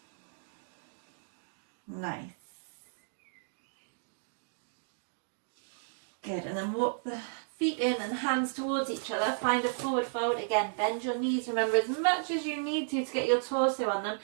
Nice. Good, and then walk the feet in and hands towards each other. Find a forward fold. Again, bend your knees. Remember, as much as you need to get your torso on them,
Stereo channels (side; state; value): left; silent; digital silence